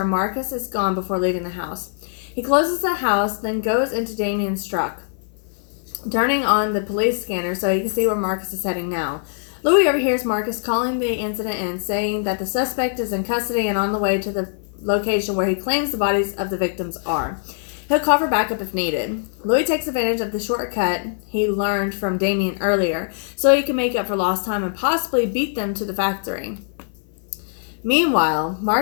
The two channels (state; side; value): silent; right; 58 dB below the other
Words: Marcus is gone before leaving the house. He closes the house, then goes into Damien's truck, turning on the police scanner so he can see where Marcus is heading now. Louis overhears Marcus calling the incident in, saying that the suspect is in custody and on the way to the location where he claims the bodies of the victims are. He'll call for backup if needed. Louis takes advantage of the shortcut he learned from Damien earlier so he can make up for lost time and possibly beat them to the factory. Meanwhile,